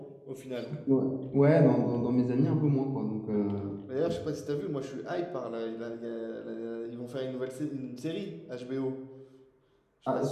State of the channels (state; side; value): identical; both; correlation 1.00